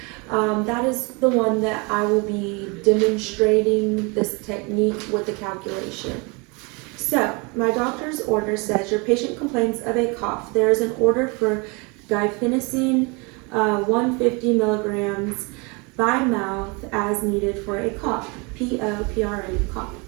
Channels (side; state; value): left; quieter; 29.7 dB